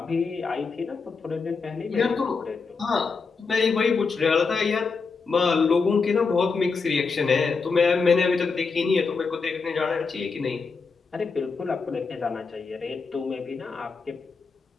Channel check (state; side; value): quieter; right; 4.8 dB